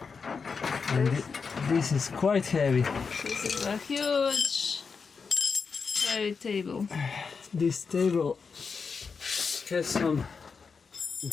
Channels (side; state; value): right; quieter; 5.3 dB